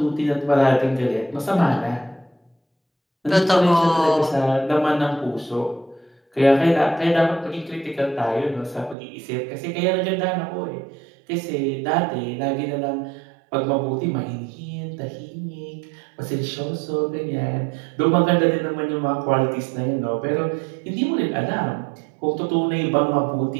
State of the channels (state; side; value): drops out; left; at 9.0 s